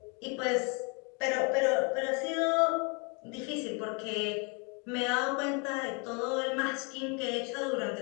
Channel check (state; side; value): quieter; right; 33.2 dB